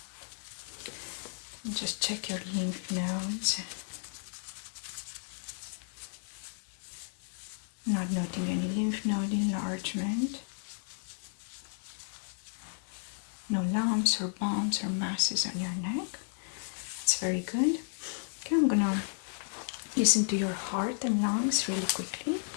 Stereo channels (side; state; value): right; silent; digital silence